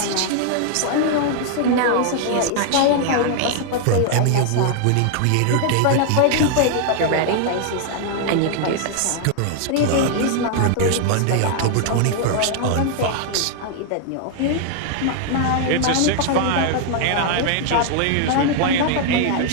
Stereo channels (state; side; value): different; both; correlation 0.00